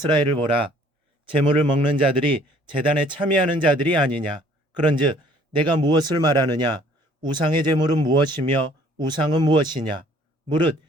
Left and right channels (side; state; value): both; normal; correlation 0.57